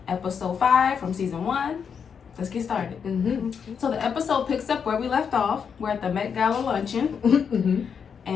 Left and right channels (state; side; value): quieter; right; 6.8 dB